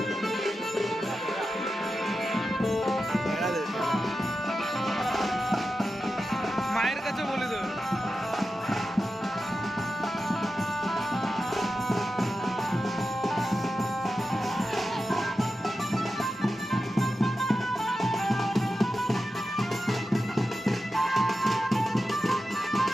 মায়ের কাছে বলে দেবে।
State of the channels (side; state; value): both; normal; correlation 0.91